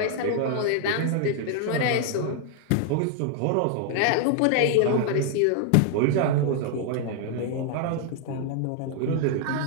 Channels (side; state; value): both; different; correlation 0.00